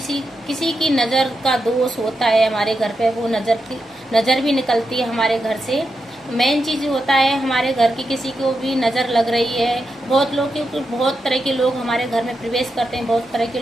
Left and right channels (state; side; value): normal; both; correlation 0.86